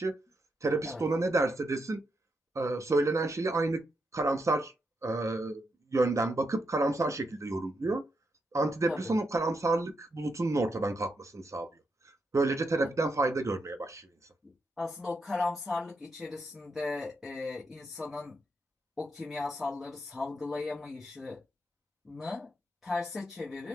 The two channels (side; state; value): both; normal; correlation 0.82